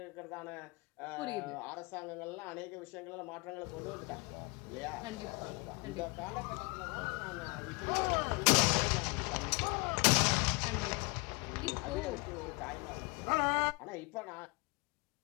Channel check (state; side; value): quieter; right; 29.3 dB